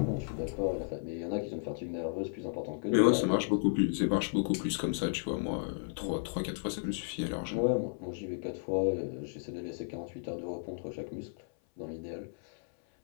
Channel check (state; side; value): silent; right; 55 dB below the other